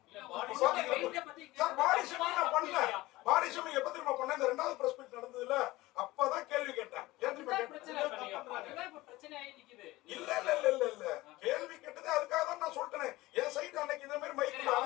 சார் பாடி ஷேமிங் நான் பண்ணல. பாடி ஷேமிங் எப்ப திரும்ப பண்ண? இந்த 2வது பிரஸ் மீட் நடந்ததுல அப்பதான் கேள்வி கேட்டேன். இல்ல இல்ல இல்ல இல்ல இல்ல கேள்வி கேட்டது அதுக்காக தான் நான் சொல்றேன். என் சைடு அன்னைக்கு இதே மாதிரி மைக்ல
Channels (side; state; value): right; quieter; 18.9 dB